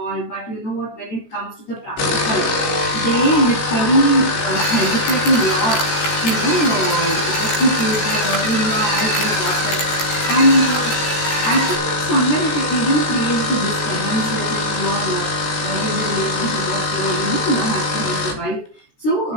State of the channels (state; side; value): late; right; 14 ms